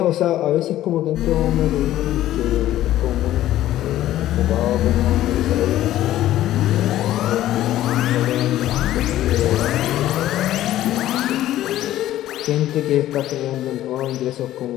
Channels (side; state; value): right; quieter; 13.7 dB